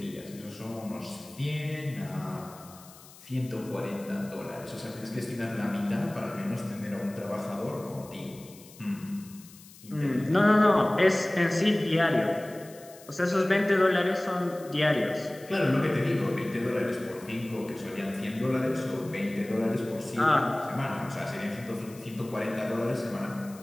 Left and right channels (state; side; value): noise; left; hiss, 21 dB below the sound